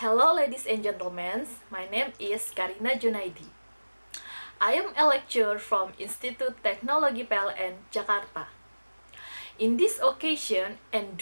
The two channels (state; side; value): inverted; both; correlation -1.00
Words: ladies and gentlemen, my name is Karina Djunaidi. I am a lecturer from Institut Teknologi PLN, Jakarta. In this occasion, and